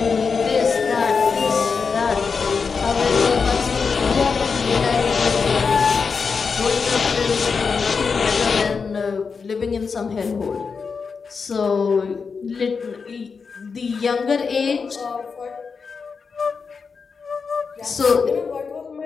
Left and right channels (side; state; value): right; quieter; 5.3 dB